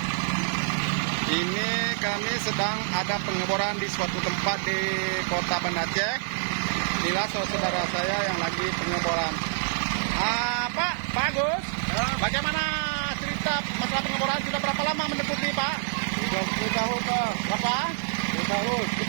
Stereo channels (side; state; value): left; silent; digital silence